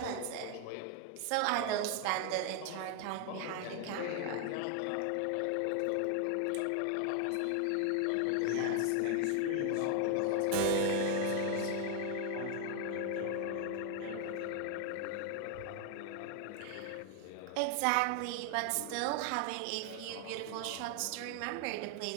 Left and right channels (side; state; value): both; different; correlation 0.00